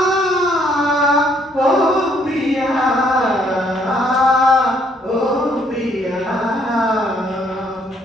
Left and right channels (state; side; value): normal; both; correlation 0.66